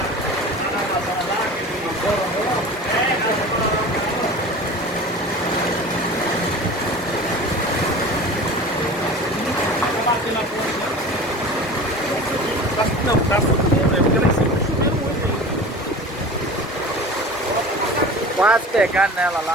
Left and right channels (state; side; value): normal; both; correlation 0.37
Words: Não, tá subindo, é porque lá em cima tá chovendo muito. Quase pegando nela